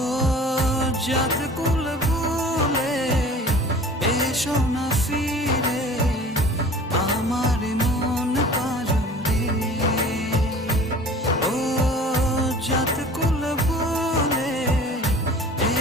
জাত কুল ভুলে এসো না ফিরে আমার মন পাজরে। ও জাত কুল ভুলে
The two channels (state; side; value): normal; both; correlation 0.44